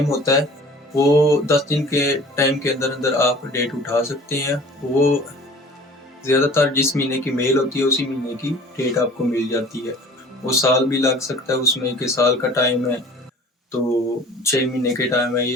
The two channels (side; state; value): both; normal; correlation 0.46